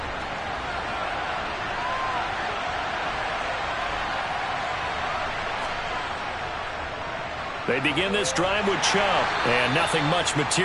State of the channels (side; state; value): both; identical; correlation 1.00